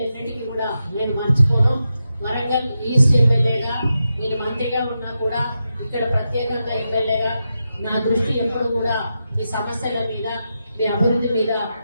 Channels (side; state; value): both; inverted; correlation -0.88